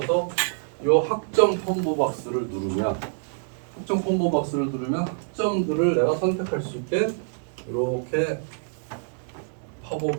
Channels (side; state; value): left; silent; digital silence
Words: 이 학점 콤보 박스를 누르면 학점들을 내가 선택할 수 있게 이렇게